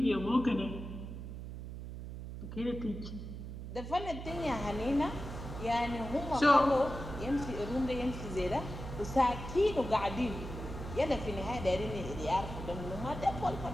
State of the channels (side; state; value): right; noise; hum, 9 dB below the sound